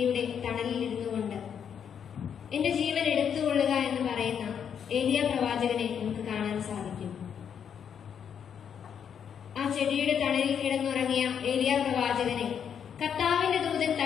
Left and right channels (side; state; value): right; quieter; 8.0 dB